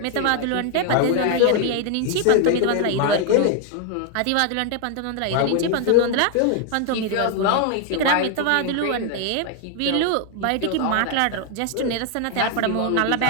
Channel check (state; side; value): different; both; correlation 0.00